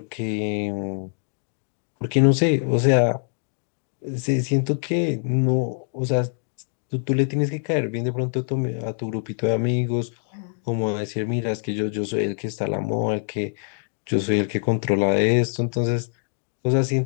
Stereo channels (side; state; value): right; silent; digital silence